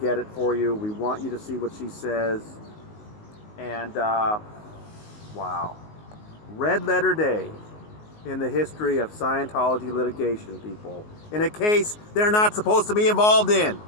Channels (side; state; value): right; late; 19 ms